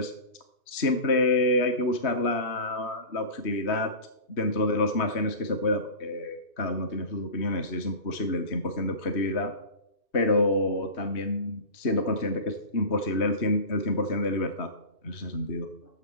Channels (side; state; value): right; late; 2.5 ms